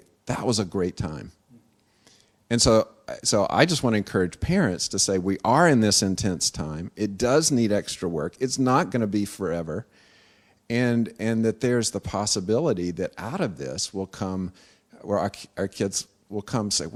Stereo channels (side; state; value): both; identical; correlation 1.00